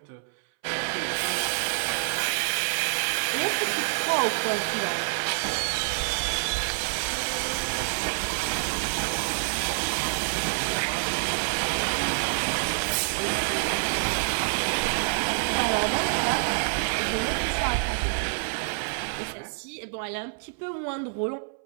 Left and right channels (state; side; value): silent; left; 60 dB below the other